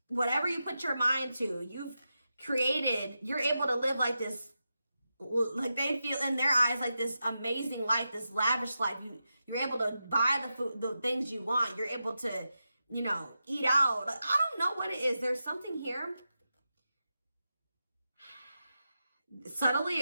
whatever you put your mind to. You've created, you're able to live like this, like they feel in their eyes like this amazing life, this lavish life. You're able to buy the food, the things you want. You're able to, you know, eat out. Like, I don't know what it is. There's something here. Subtly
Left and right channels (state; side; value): inverted; both; correlation -0.89